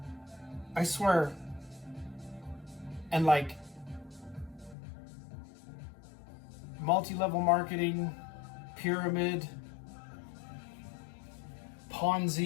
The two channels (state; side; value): drops out; right; at 4.8 s